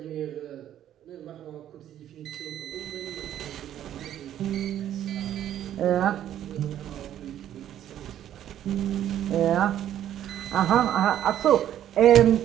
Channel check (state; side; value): quieter; left; 11.2 dB